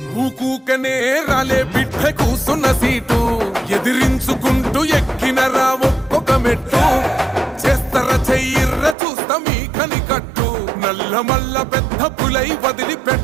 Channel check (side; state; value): left; drops out; at 9.0 s